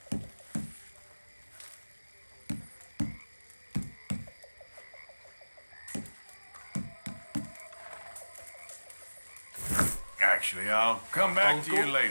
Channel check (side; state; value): both; inverted; correlation -1.00